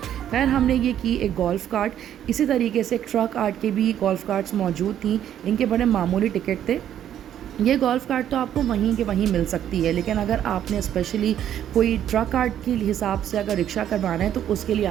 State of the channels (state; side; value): quieter; left; 10.5 dB